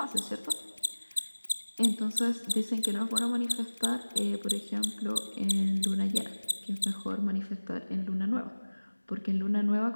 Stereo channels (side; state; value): both; inverted; correlation -1.00